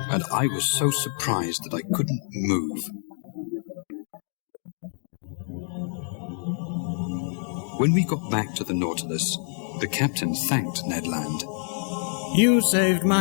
and I was so surprised that I couldn't move. When we got back to the Nautilus, the captain thanked Ned Land. You saved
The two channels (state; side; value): silent; right; 61 dB below the other